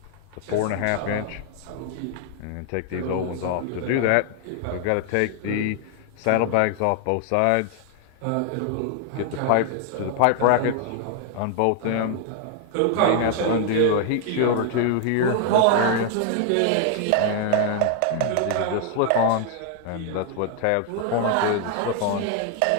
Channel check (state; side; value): different; both; correlation 0.00